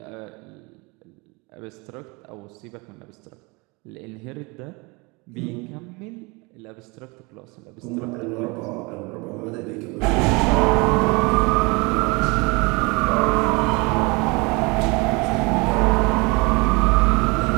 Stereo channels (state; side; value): quieter; left; 27.2 dB